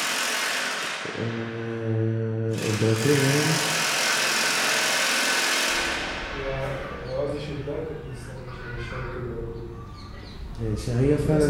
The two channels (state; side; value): identical; both; correlation 1.00